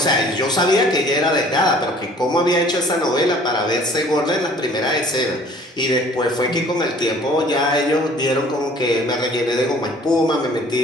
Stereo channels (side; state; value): both; normal; correlation 0.52